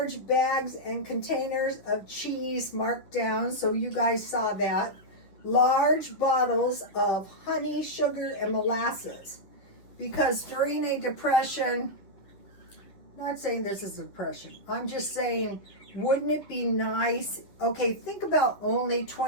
bags and containers of cheese marked down, so you guys saw that. Large bottles of honey, sugar, and molasses. Because during a depression, I'm not saying this is a depression, I'm just saying, wouldn't it be nice? Okay, think about only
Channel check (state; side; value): late; right; 11 ms